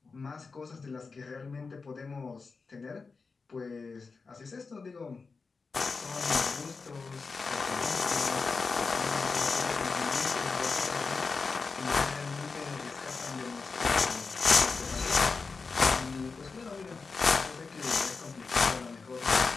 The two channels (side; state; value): right; quieter; 4.5 dB